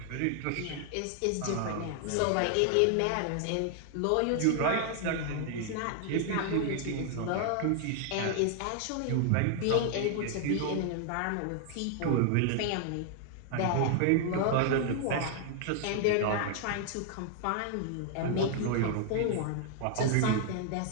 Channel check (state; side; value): different; both; correlation 0.00